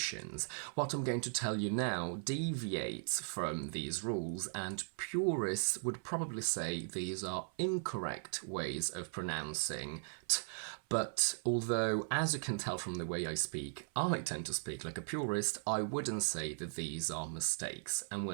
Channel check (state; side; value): silent; left; 52 dB below the other